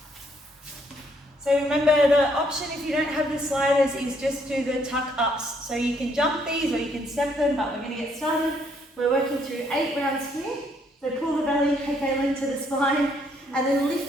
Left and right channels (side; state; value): both; normal; correlation 0.69